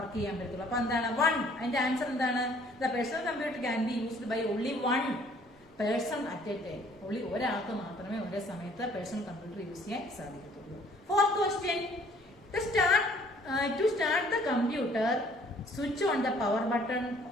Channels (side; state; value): both; normal; correlation 0.58